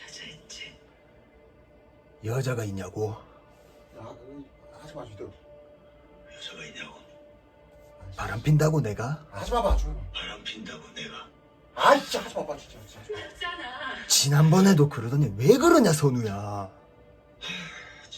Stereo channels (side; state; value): both; identical; correlation 1.00